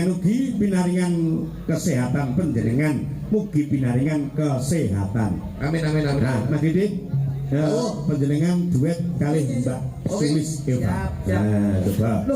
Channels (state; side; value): identical; both; correlation 1.00